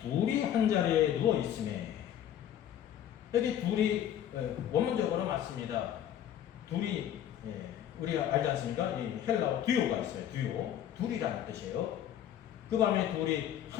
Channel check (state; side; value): quieter; right; 10.5 dB